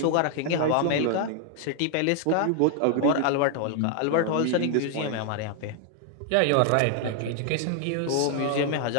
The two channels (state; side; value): different; both; correlation 0.00